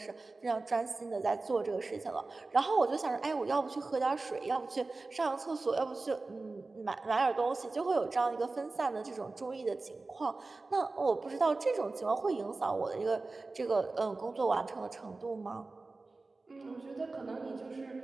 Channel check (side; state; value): left; quieter; 3.5 dB